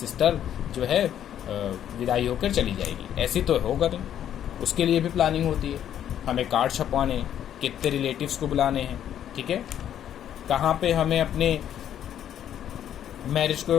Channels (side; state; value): right; quieter; 10.3 dB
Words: जो है विदाई होकर चली जाएगी। ऐसी तो होगा नहीं, उसके लिए भी प्लानिंग होती है। हमें कार्ड छपवाने, कितने रिलेटिव्स को बुलाने हैं, ठीक है, कहाँ पे हमें अपने मैरिज